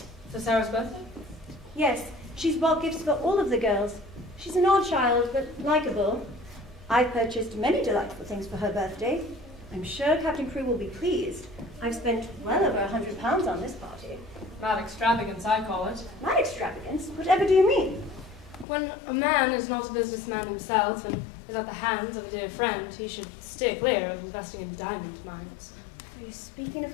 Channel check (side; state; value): right; drops out; at 18.7 s